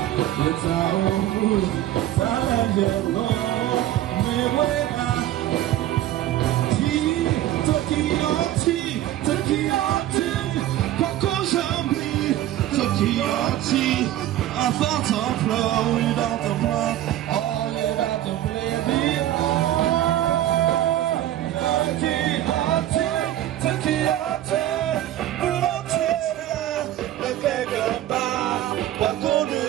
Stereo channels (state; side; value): quieter; left; 13.4 dB